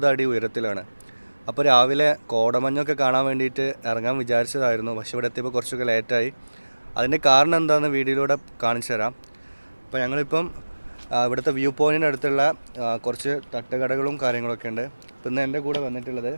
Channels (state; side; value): inverted; both; correlation -1.00